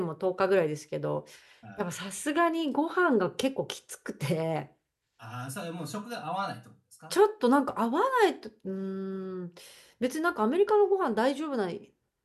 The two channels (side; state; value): both; identical; correlation 1.00